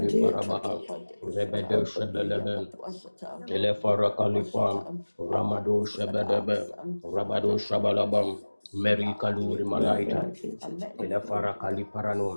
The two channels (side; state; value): both; inverted; correlation -1.00